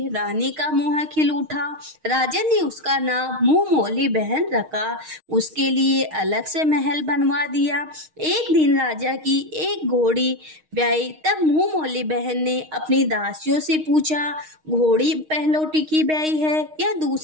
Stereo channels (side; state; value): left; late; 6.4 ms